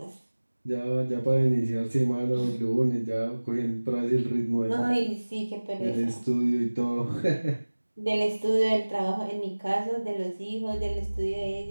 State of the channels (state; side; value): inverted; both; correlation -1.00